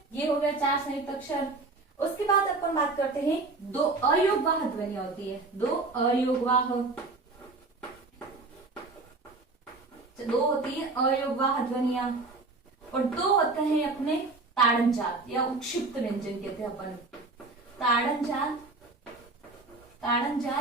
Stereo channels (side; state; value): left; quieter; 3.5 dB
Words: ये हो गया 4 संयुक्त अक्षर। उसके बाद अपन बात करते हैं 2 अयोगवाह ध्वनियां होती है, 2 अयोगवाह, 2 होती है अयोगवाह ध्वनियां, और 2 होते हैं अपने ताड़नजात या उक्षिप्त व्यंजन कहते हैं अपन। ताड़नजात,